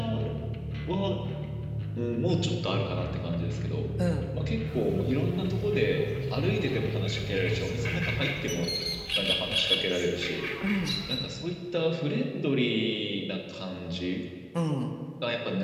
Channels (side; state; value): both; identical; correlation 1.00